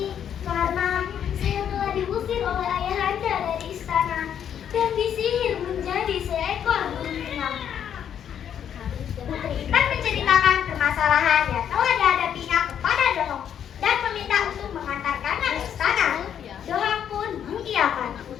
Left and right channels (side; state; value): right; quieter; 9.0 dB